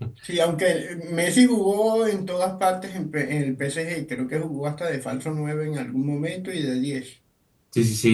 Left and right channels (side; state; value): both; identical; correlation 1.00